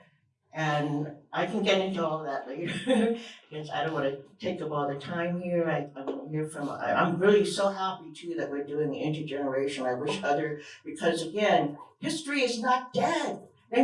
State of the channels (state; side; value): identical; both; correlation 1.00